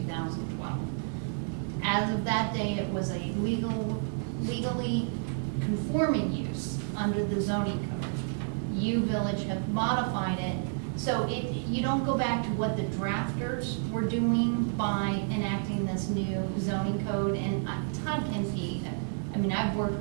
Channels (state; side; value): silent; left; 58 dB below the other